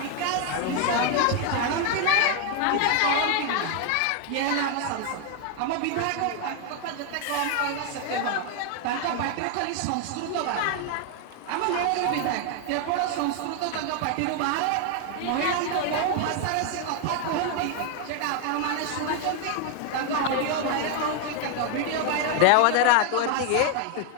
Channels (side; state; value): both; different; correlation 0.00